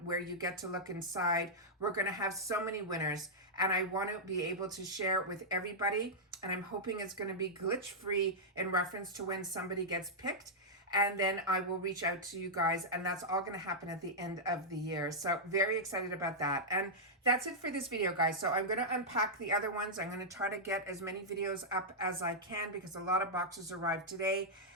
where you get to look inside. We're going to have so many winners and I want to be able to share it with everybody. And I'm hoping it's going to be glitch free in reference to when somebody gets picked. And then I will reach out to you guys, and that's all going to happen at the end of the year. So very excited about that. And that's it for this video, guys. So I'm going to unpack the other ones. I'm going to try to get as many videos up as I can because a lot of boxes arrived today.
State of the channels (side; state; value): both; normal; correlation -0.08